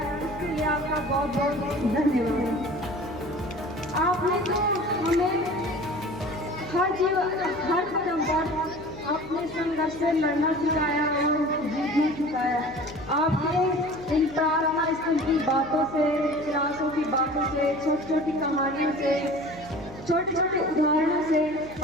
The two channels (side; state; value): right; noise; hum, 17 dB below the sound